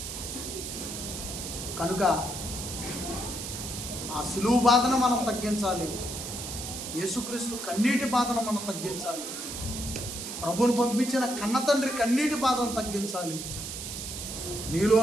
కనుక ఆ సిలువ బాధను మనం తగ్గించాలి. యేసుక్రీస్తు కన్నీటి బాధను మనం తగ్గించాలి. ప్రభువును పంపించిన కన్న తండ్రి కన్నీటి బాధను తగ్గించాలి. నీలో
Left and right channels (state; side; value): noise; right; hiss, 7 dB below the sound